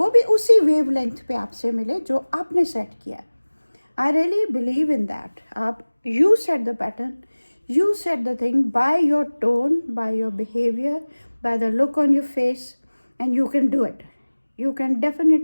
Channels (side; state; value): both; inverted; correlation -1.00